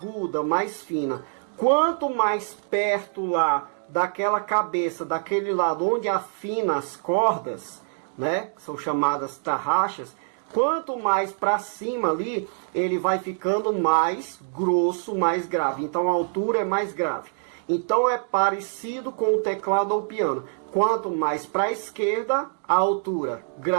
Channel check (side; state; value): left; silent; digital silence